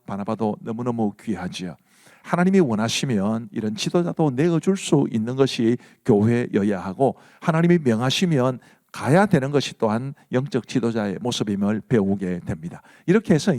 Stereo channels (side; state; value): both; identical; correlation 1.00